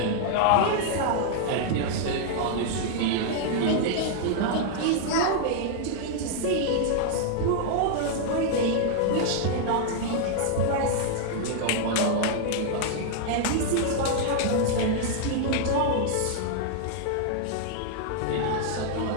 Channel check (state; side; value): different; both; correlation -0.01